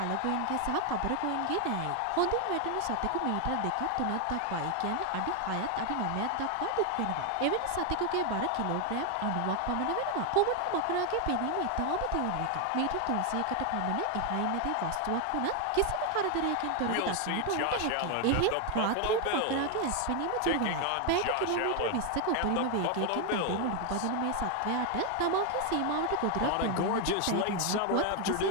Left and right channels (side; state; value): both; different; correlation 0.01